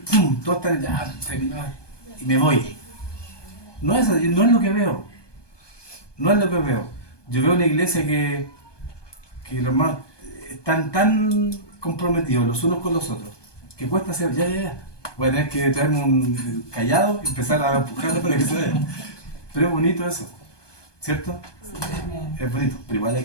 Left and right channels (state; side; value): late; right; 1.2 ms